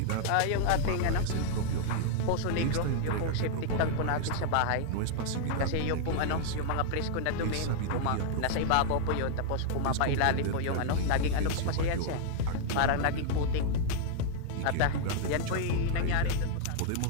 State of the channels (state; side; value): different; both; correlation -0.01